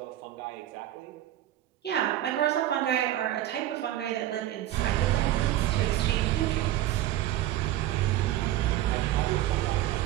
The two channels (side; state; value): left; quieter; 13.6 dB